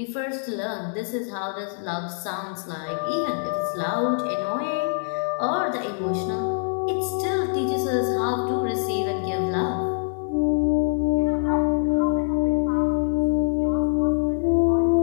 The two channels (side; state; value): right; silent; 62 dB below the other